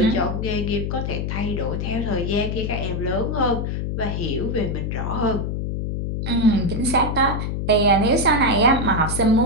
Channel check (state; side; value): noise; left; hum, 2 dB below the sound